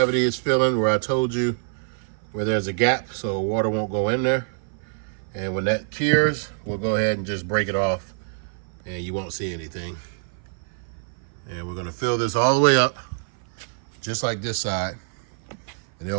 is filling where I told you where there's a gap so water won't go in there. And when that cures, we'll go ahead and just break it off and you won't see anything. And we're gonna fill this all the way up, just like this side. And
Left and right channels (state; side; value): silent; left; 56 dB below the other